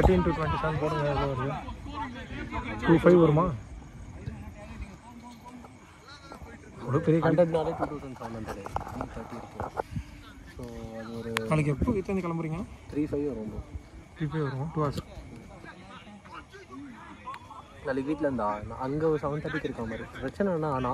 into 27 போடுங்க. எவ்வளோ வருது? 25 வருமா? ஒரு பெரிய கண்டென்ட்னாலே 2700 ஸோ அது ஒரு நாளைக்கு எப்போ வீட்டிலேருந்து கிளம்புறீங்க? 35 வரும். 35 வரும். 2 hours. நாளைக்கு வீட்டில் இருந்தா அங்கே ஒரு 7:30 இருக்க மாதிரி. பிரச்சனைனா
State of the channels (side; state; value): both; identical; correlation 1.00